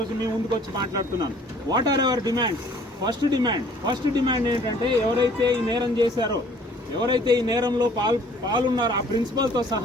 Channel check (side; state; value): both; normal; correlation 0.55